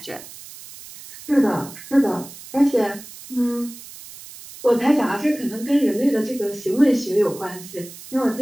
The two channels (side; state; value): right; noise; hiss, 16 dB below the sound